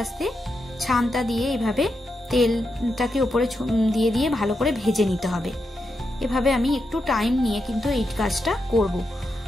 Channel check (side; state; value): both; normal; correlation 0.85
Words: আস্তে ছানটা দিয়ে এইভাবে তেলটাকে উপরে দিয়ে দিয়ে ভালো করে ভেজে নিতে হবে। এভাবে আমি একটু টাইম নিয়ে কিন্তু এই কাজটা করব,